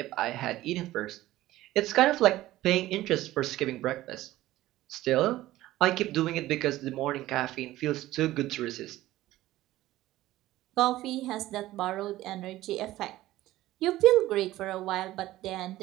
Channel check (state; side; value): quieter; left; 15.9 dB